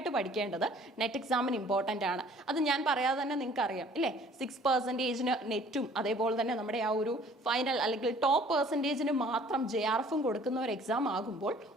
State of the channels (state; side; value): normal; both; correlation 0.54